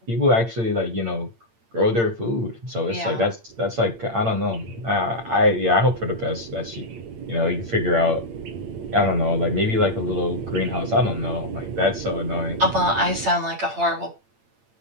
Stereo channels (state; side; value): late; left; 8.8 ms